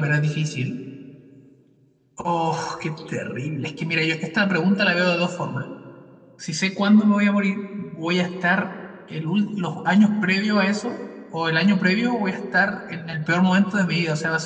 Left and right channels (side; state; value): both; identical; correlation 1.00